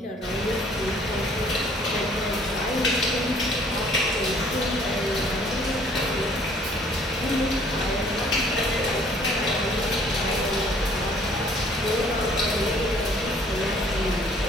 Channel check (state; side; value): normal; both; correlation 0.57